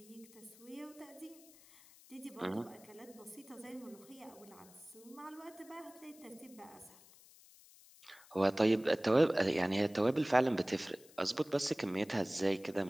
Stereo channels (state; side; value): noise; left; hiss, 23 dB below the sound